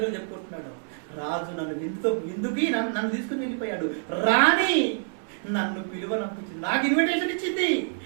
చెప్పుకుంటున్నాడు. రాజు నన్ను విందుకి నన్ను తీసుకుని వెళ్ళిపోయాడు. రాణి నన్ను పిలువనంపించింది, నాకు ఇన్విటేషన్ ఇచ్చింది.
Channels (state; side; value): silent; left; 60 dB below the other